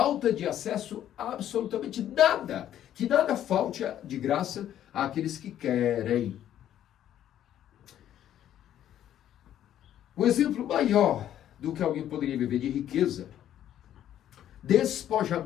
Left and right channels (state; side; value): quieter; right; 11.2 dB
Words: de acesso a absolutamente nada. Que nada falte de graça àqueles que querem. O exemplo maior do que alguém poderia viver de riqueza,